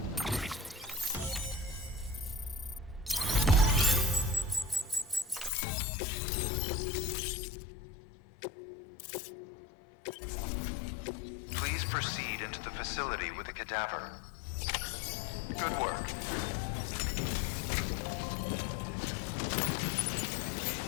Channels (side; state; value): right; drops out; at 5.5 s